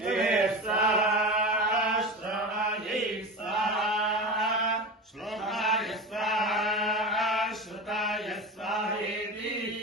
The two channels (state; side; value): normal; both; correlation 0.27